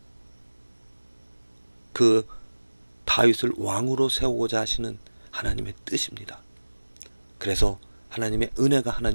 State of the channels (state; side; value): inverted; both; correlation -1.00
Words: 그 다윗을 왕으로 세우고자 하시는 하나님의 뜻입니다. 그래서 하나님의 은혜가,